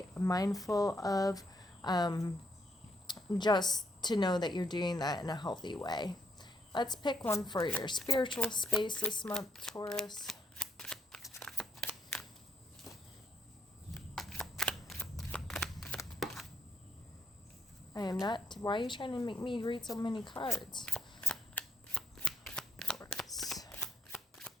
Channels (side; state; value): both; normal; correlation 0.76